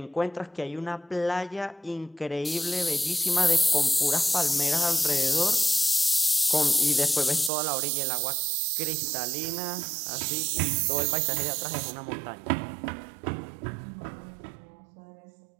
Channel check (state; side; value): drops out; left; at 7.5 s